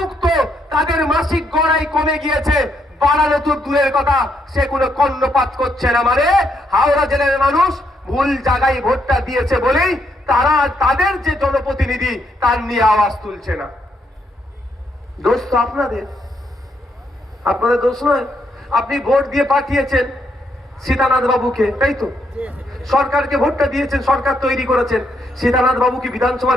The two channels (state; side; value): normal; both; correlation 0.76